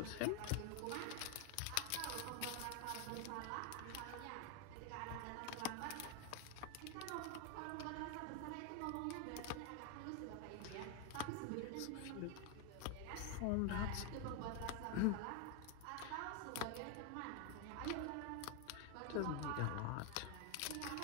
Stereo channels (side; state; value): both; different; correlation 0.01